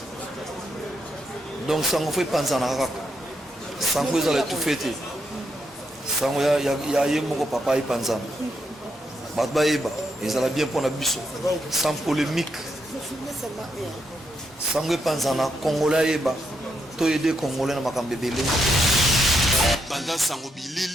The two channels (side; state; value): both; normal; correlation 0.80